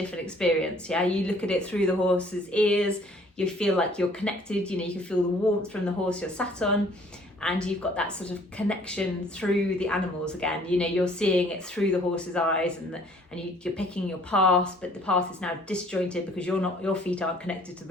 experience. You look at it through the horse's ears, you feel like you're connected, you can feel the warmth from the horse you're sat on, and you've got that sort of connection through the animals again. You're seeing it through the horse's eyes, and you're picking your path, but the path is now disjointed because your feet aren't connected to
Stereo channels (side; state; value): both; normal; correlation 0.57